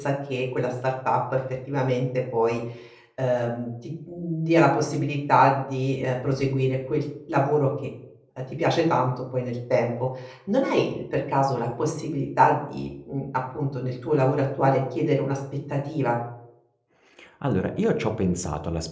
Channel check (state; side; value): identical; both; correlation 1.00